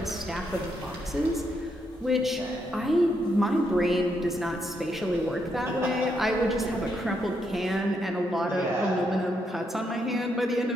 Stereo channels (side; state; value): both; normal; correlation 0.78